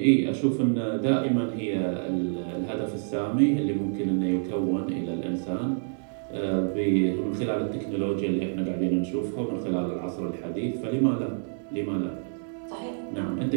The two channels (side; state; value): left; silent; 60 dB below the other